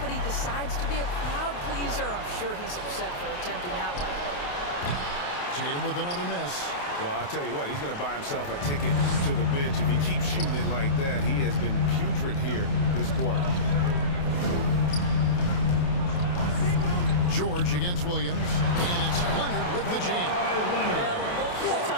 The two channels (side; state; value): right; late; 28 ms